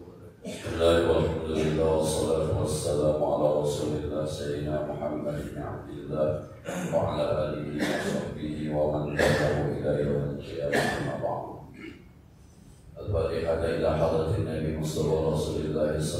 Bismillahirrahmanirrahim. Wassalatu wassalamu ala Rasulillah Sayyidina Muhammad bin Abdillah wa ala alihi wa sahbihi wa man tabi'ahu ila yaumil qiyamah, amma ba'd. Al-Fatihah ila hadratin Nabi Mustafa Rasulillah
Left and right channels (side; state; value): both; identical; correlation 1.00